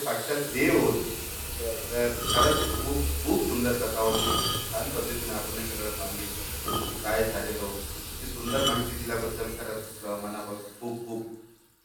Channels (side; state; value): both; identical; correlation 1.00